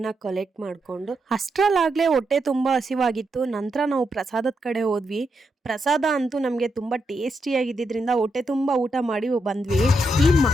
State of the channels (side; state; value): both; normal; correlation 0.82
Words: ಕಲೆಕ್ಟ್ ಮಾಡಿಕೊಂಡು ಅಷ್ಟರಲ್ಲಾಗಲೇ ಹೊಟ್ಟೆ ತುಂಬ ಹಸಿವಾಗಿತ್ತು. ನಂತರ ನಾವು ಪ್ರಸಾದದ ಕಡೆ ಹೋದ್ವಿ. ಪ್ರಸಾದ ಅಂತೂ ನಮಗೆ ತುಂಬ ಟೇಸ್ಟಿಯಾಗಿದ್ದರಿಂದ ಹೊಟ್ಟೆ ತುಂಬ ಊಟ ಮಾಡಿ ಬಂದ್ವಿ. ಈ